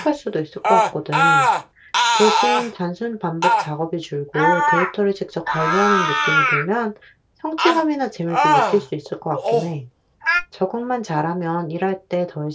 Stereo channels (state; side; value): identical; both; correlation 1.00